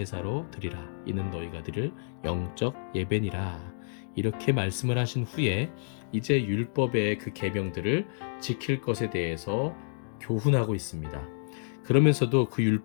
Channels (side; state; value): right; silent; digital silence